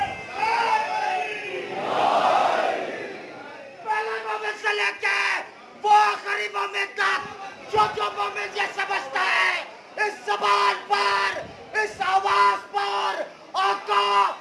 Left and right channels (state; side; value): identical; both; correlation 1.00